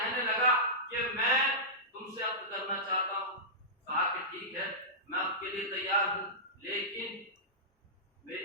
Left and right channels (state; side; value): normal; both; correlation -0.15